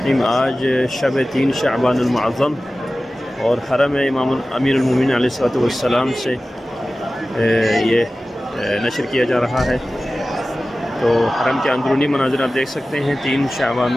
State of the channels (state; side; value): normal; both; correlation 0.96